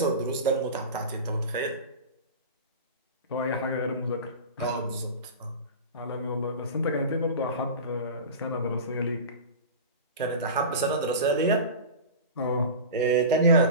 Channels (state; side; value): inverted; both; correlation -0.30